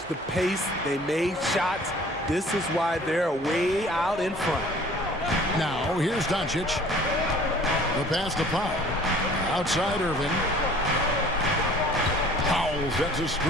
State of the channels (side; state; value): both; normal; correlation 0.51